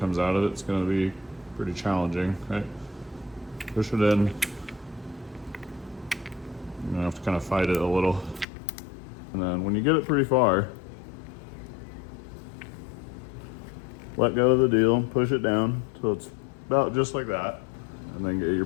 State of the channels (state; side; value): drops out; right; at 8.5 s